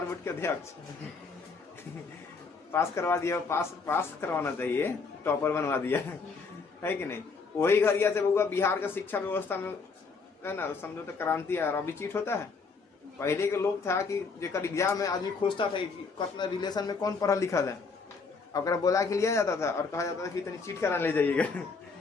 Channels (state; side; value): quieter; right; 4.7 dB